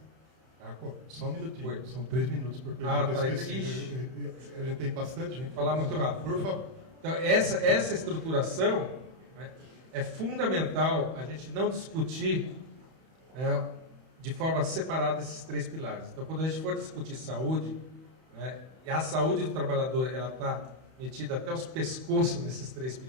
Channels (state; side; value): late; left; 31 ms